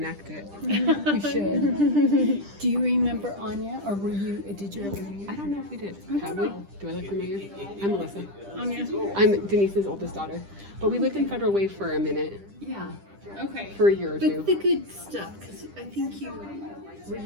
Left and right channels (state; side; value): late; left; 10 ms